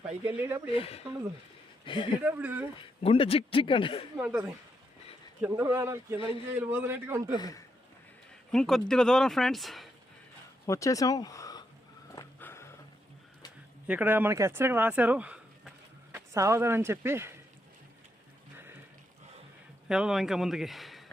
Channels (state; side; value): normal; both; correlation 0.80